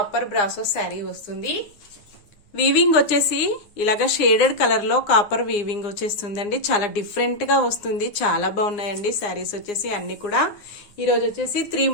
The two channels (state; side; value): late; right; 9.3 ms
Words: బ్రాసో శారీ వస్తుంది. వీవింగ్ వచ్చేసి ఇలాగా షేడెడ్ కలర్ లో కాపర్ వీవింగ్ వచ్చేస్తుందండి. చాలా డిఫరెంట్ గా వస్తుంది. చాలా బాగున్నాయండి శారీస్ వచ్చేసి అన్ని కూడా. ఈరోజు వచ్చేసి 3